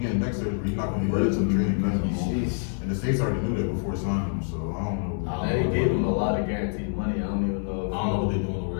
neck surgery. He's not going to be ready to training camp anymore. Jeez. And the States already knew that before signing him, so I don't know. They gave him a lot of guaranteed money. I don't even know. I don't know what they're doing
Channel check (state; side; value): silent; right; 61 dB below the other